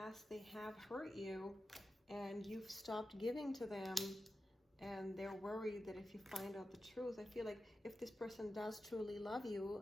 they have hurt you and you've stopped giving to them, and they're worried that if you find out the truth, I feel like if this person does truly love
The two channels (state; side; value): normal; both; correlation 0.92